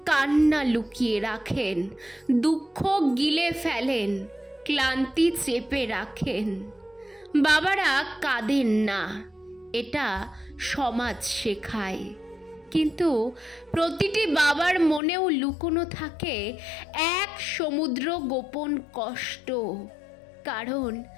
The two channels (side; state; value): right; drops out; at 15.0 s